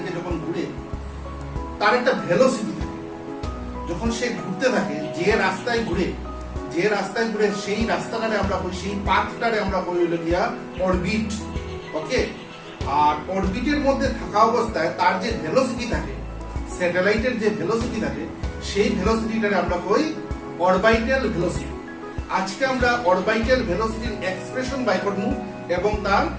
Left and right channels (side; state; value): both; identical; correlation 1.00